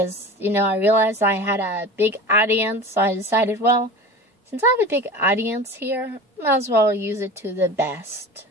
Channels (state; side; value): normal; both; correlation 0.34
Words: I realized I had a big audience, so I decided, well, since I have a big audience here, I might as well use it to the best